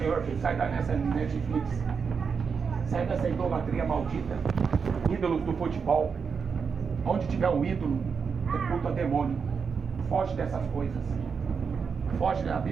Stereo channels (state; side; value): quieter; left; 5.9 dB